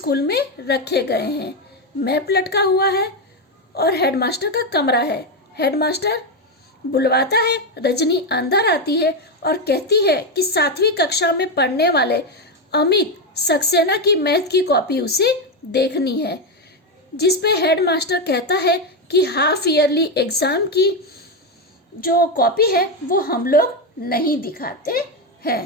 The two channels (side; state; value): both; normal; correlation 0.09